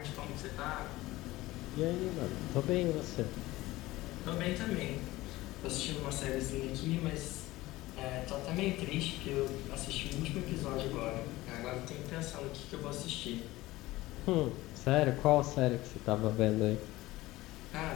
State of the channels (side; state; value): right; quieter; 18.3 dB